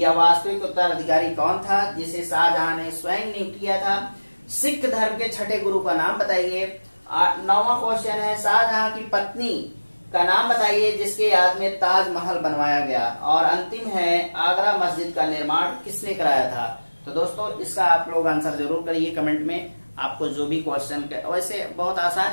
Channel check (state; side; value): inverted; both; correlation -1.00